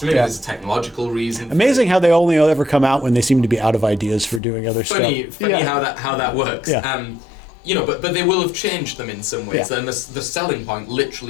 Maybe there's a technological reason. Amazing how they only ever come out when they seem to be out of ideas for doing other stuff. Funny how that works. But they will have changed them in some ways. And the selling point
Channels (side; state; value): right; drops out; at 4.4 s